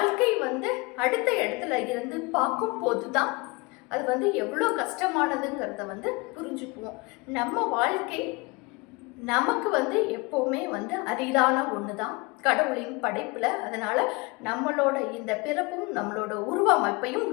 அடுத்த இடத்துல இருந்து பார்க்கும் போதுதான் அது எவ்வளோ கஷ்டமானதுங்கிறத புரிஞ்சுக்குவோம். நம்ம வாழ்க்கை நமக்கு வந்து எப்போவுமே வந்து அரிதான ஒன்று தான் கடவுளின் படைப்பில். அதனால் நம்மளோட இந்த பிறப்பும் நம்மளோட உருவ அமைப்பையும்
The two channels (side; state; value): right; quieter; 26.4 dB